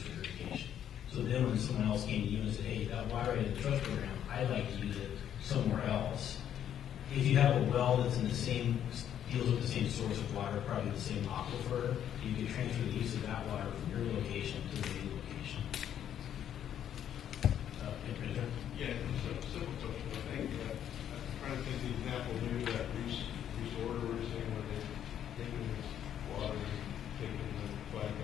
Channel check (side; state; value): right; quieter; 10.0 dB